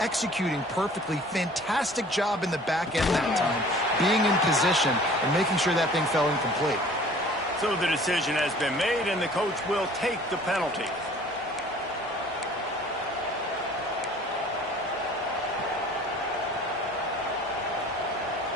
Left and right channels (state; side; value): normal; both; correlation 0.49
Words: perfectly. Fantastic job in the back end that time, being in position and making sure that thing fell incomplete. So the decision has been made, and the coach will take the penalty.